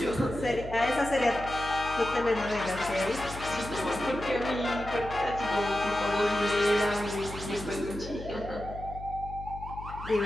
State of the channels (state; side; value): noise; left; hum, 12 dB below the sound